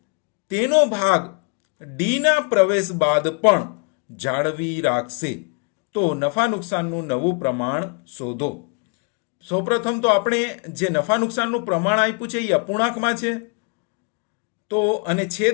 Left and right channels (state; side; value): quieter; right; 35.4 dB